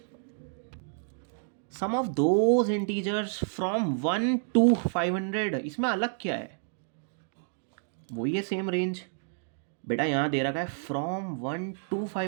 sum of those integers from 1 to 500। इसमें अलग क्या है? वही है सेम रेंज। बेटा यहाँ दे रखा है फ्रॉम 1 to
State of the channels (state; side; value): silent; left; digital silence